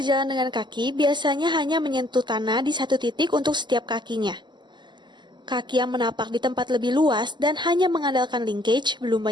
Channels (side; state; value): left; late; 0.22 ms